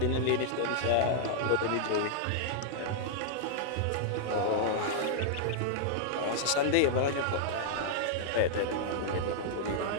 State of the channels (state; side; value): different; both; correlation -0.01